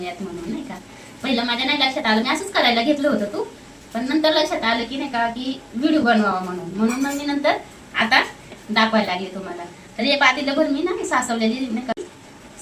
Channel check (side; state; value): both; identical; correlation 1.00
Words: म्हणून, नाही का. पहिलं माझ्या नाही लक्षात आलं, मी असंच करायला घेतलं होतं तू. पण नंतर लक्षात आलं की नाही का की व्हिडिओ बनवावा म्हणून मग मी नंतर आता दाखवायला लागले तुम्हाला. तर हे पातीला भर मी ना सासवलेली नाही का